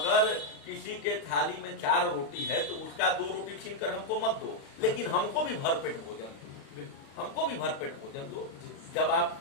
किसी के थाली में 4 रोटी है तो उसका 2 रोटी छीन कर हमको मत दो, लेकिन हमको भी भरपेट भोजन दो, हमको भी भरपेट भोजन दो। जब आप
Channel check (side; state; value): right; late; 36 ms